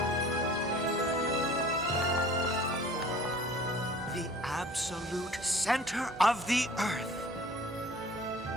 Absolute center of the Earth.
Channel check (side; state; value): both; normal; correlation 0.48